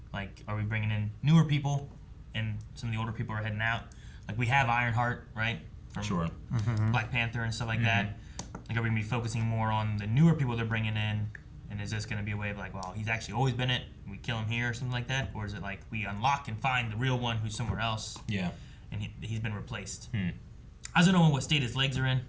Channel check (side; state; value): both; identical; correlation 1.00